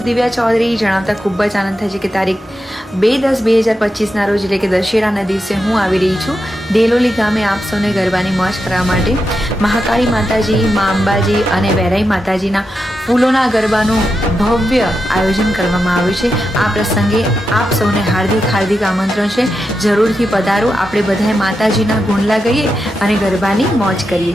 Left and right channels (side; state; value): both; normal; correlation 0.87